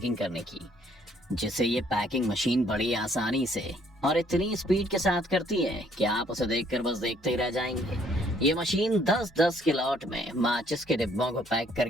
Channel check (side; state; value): both; normal; correlation 0.64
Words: करने की, जिसे ये पैकिंग मशीन बड़ी आसानी से और इतनी स्पीड के साथ करती है कि आप उसे देखकर बस देखते ही रह जाएंगे। ये मशीन 10-10 के लॉट में माचिस के डिब्बों को पैक